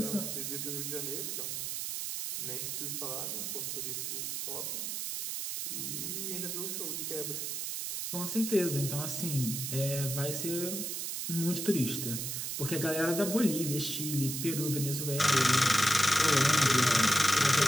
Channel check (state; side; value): noise; right; hiss, 3 dB below the sound